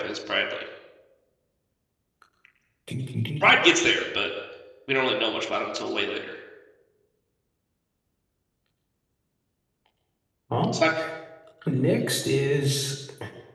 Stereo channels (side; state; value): both; identical; correlation 1.00